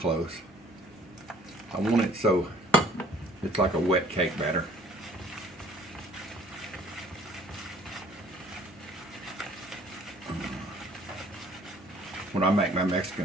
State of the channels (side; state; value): both; normal; correlation 0.54